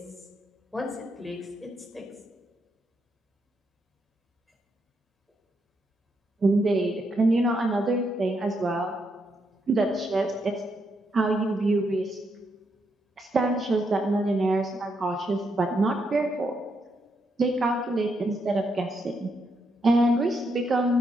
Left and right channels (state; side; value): normal; both; correlation 0.79